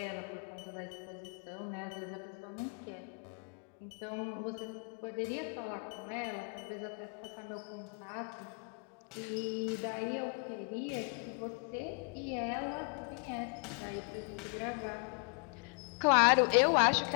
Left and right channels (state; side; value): quieter; right; 39.6 dB